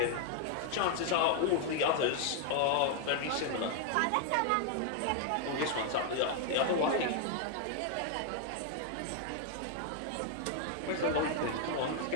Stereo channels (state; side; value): different; both; correlation 0.00